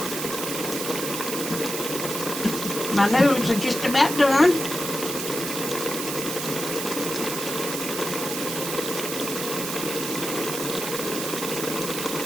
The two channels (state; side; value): noise; right; hiss, 4 dB below the sound